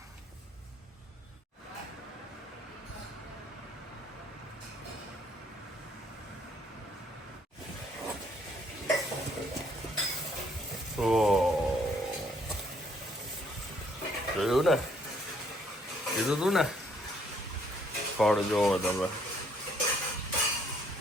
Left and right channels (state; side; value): normal; both; correlation 0.66